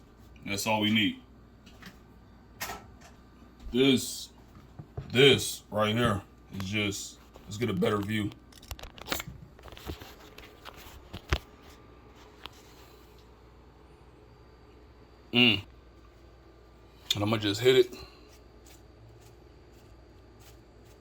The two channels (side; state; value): both; identical; correlation 1.00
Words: That's all we need. This right here is just, let's get a better view. And I'm gonna just hit it.